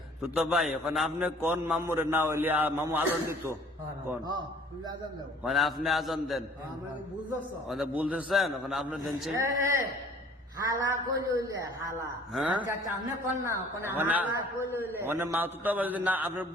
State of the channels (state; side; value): normal; both; correlation 0.53